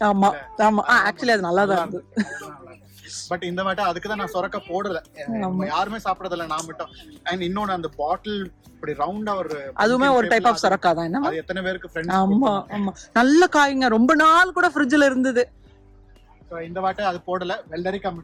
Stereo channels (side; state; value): both; identical; correlation 1.00